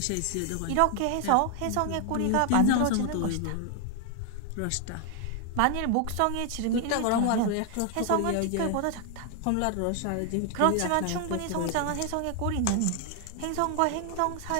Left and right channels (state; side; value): different; both; correlation 0.00